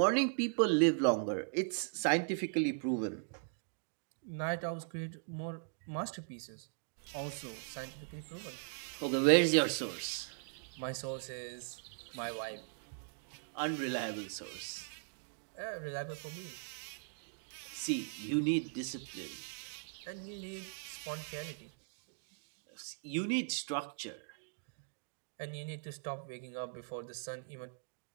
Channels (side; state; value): left; silent; digital silence